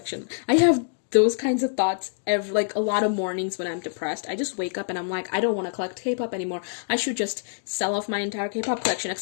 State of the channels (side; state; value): right; silent; digital silence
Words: I have those kinds of thoughts like a lot of mornings when I'm depressed. I just wake up and I'm like, I don't want to collect K-pop anymore. I should just sell off my entire K-pop collection,